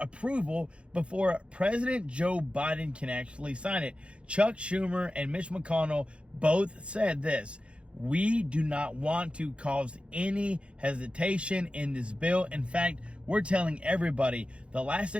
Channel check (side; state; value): left; late; 0.059 ms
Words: approval before President Joe Biden can actually sign it. Chuck Schumer and Mitch McConnell both said this: we do not want to cause any hesitation in this bill. In fact, we're telling everybody the last